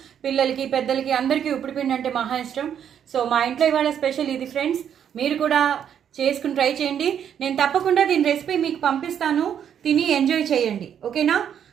పిల్లలకి పెద్దలకి అందరికీ ఉప్పిడిపిండి అంటే మహా ఇష్టం. సో మా ఇంట్లో ఇవాళ స్పెషల్ ఇది ఫ్రెండ్స్. మీరు కూడా చేసుకుని ట్రై చేయండి. నేను తప్పకుండా దీని రెసిపీ మీకు పంపిస్తాను, తిని ఎంజాయ్ చేయండి. ఓకేనా?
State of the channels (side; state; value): left; quieter; 8.9 dB